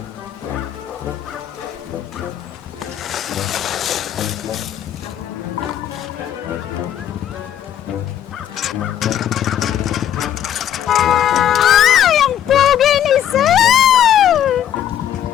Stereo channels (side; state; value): right; quieter; 10.4 dB